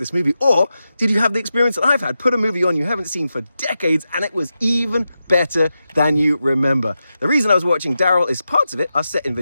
movie. Or did you have the experience that I've had? Put a movie on you haven't seen for decades and it was even better than you remember. The reason I was watching Daryl is parts of it are set in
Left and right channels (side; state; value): both; inverted; correlation -0.90